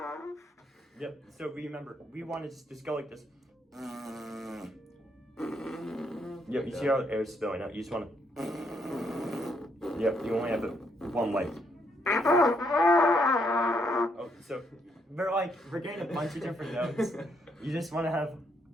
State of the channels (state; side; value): normal; both; correlation 0.74